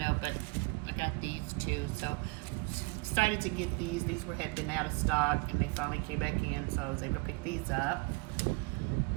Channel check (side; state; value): left; quieter; 27.1 dB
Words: but I got these too. So excited to get these. These had been out of stock and they finally came back in, so I was able to pick these up.